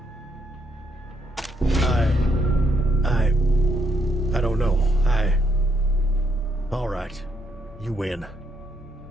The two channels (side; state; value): both; normal; correlation 0.75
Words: I don't know. All right. You win.